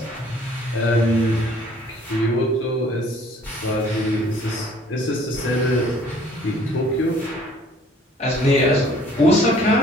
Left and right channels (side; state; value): both; normal; correlation 0.56